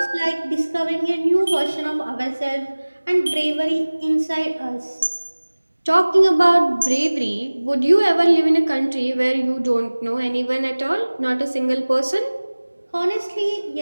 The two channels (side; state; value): both; inverted; correlation -1.00